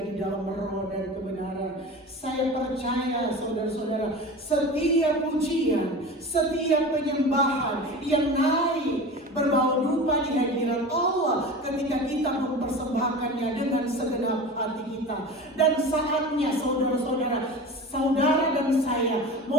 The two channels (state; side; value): normal; both; correlation 0.33